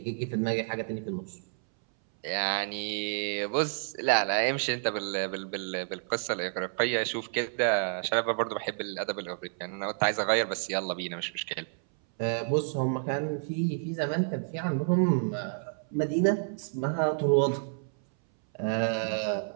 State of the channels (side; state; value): left; silent; 58 dB below the other